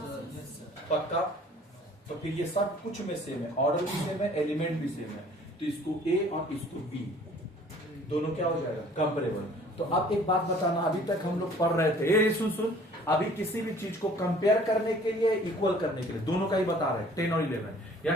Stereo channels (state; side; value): normal; both; correlation 0.52